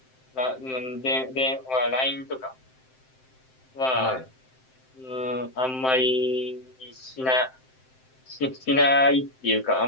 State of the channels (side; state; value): right; late; 7.7 ms